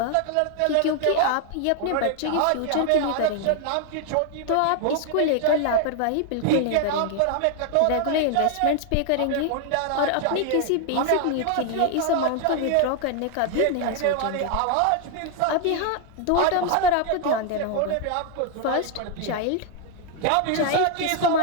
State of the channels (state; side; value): different; both; correlation 0.00